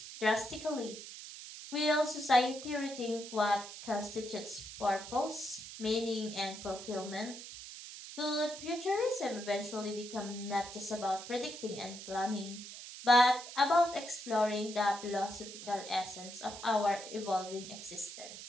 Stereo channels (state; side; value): noise; right; hiss, 12 dB below the sound